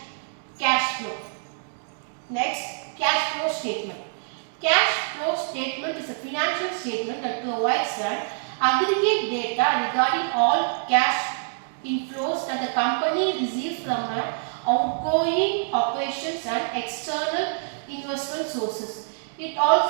cash flow. Next, cash flow statement. Cash flow statement is a financial statement that provides an aggregate data regarding all cash inflows that the company receives from outgoing operations and external investment sources. It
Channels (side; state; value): left; silent; digital silence